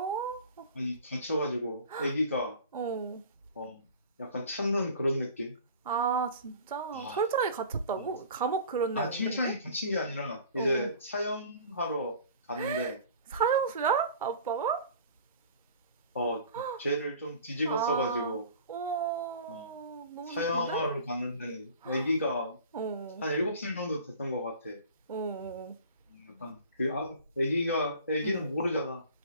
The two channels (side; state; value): both; inverted; correlation -0.44